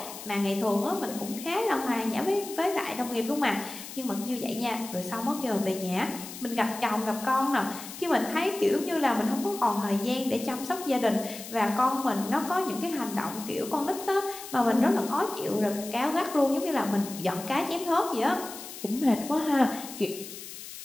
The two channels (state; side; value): noise; left; hiss, 12 dB below the sound